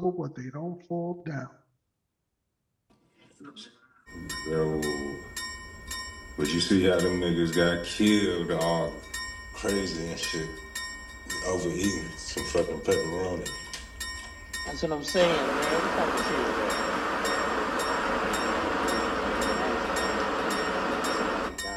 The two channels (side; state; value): both; identical; correlation 1.00